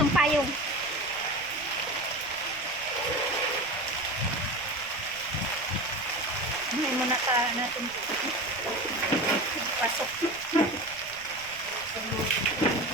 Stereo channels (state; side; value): noise; right; rumble, 22 dB below the sound